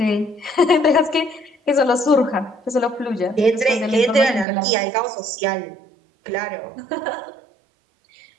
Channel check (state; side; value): drops out; left; at 4.5 s